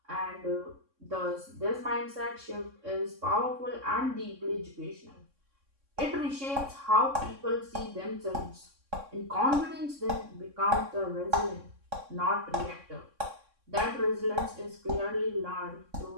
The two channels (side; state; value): left; late; 3.6 ms